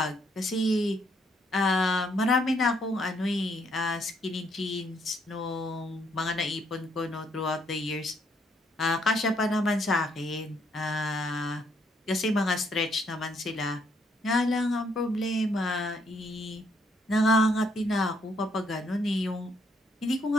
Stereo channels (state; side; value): normal; both; correlation 0.71